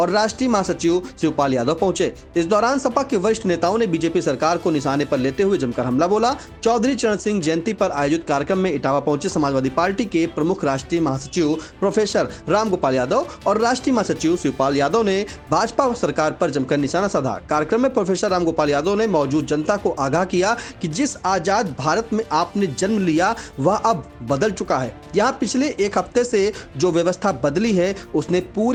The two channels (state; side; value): identical; both; correlation 1.00